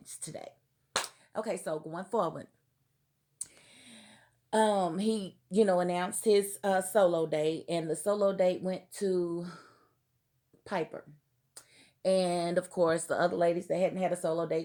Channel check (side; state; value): both; identical; correlation 1.00